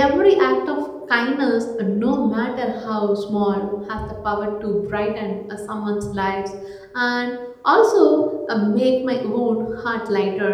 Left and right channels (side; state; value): both; identical; correlation 1.00